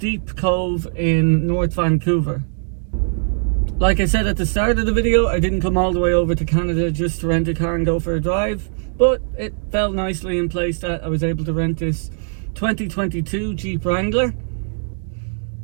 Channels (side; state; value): left; silent; digital silence